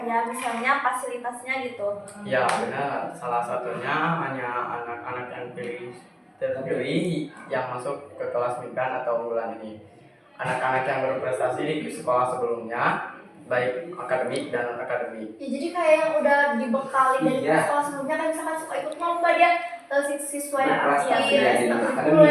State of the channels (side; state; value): both; identical; correlation 1.00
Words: misalnya fasilitasnya gitu. Ya benar, salah satunya hanya anak-anak yang terpilih yang masuk ke kelas migran atau unggulan ini. Anak-anak yang berprestasi di sekolah sebelumnya, baik akademik dan non akademik. Ya, jadi kayak yang udah dibekali dari Iya. sekolah sebelumnya, kan misalkan suka ikut lomba dia siswa yang Berprestasi aktif, ya, jadi gitu